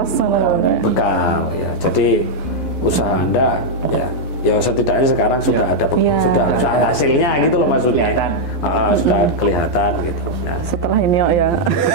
bekal ya. Jadi usaha Anda ya setidaknya sekarang sudah ada sudah hasilnya gitu loh maksudnya. Sudah kelihatan gitu. Nah, setelah ini ya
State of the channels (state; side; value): late; right; 12 ms